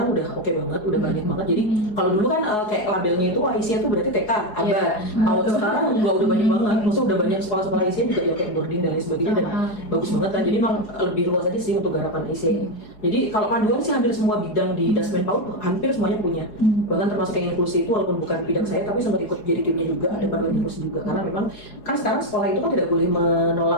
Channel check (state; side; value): late; right; 4.8 ms